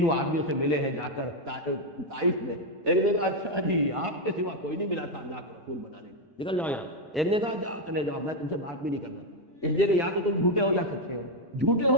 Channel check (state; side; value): normal; both; correlation 0.04